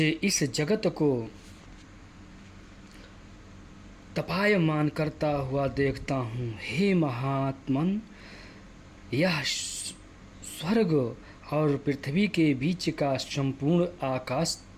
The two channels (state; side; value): identical; both; correlation 1.00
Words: इस जगत को तपायमान करता हुआ देखता हूँ। हे महात्मन, यह स्वर्ग और पृथ्वी के बीच का संपूर्ण आकाश